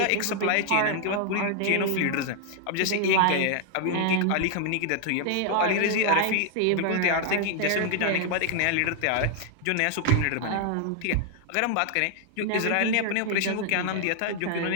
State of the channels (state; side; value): different; both; correlation 0.00